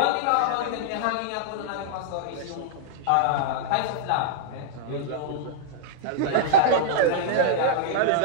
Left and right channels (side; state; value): both; different; correlation -0.02